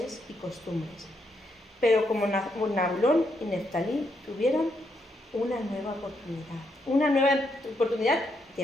y costumbres. Pero como Nabulón y Neftalí tuvieron una nueva oportunidad de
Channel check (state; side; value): normal; both; correlation 0.78